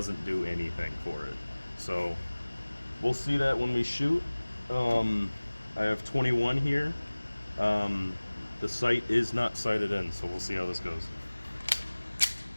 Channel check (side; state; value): both; inverted; correlation -1.00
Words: do anything for it. So we'll see that when we shoot. I have 21 here. The sight is not sighted in, so we'll see how this goes.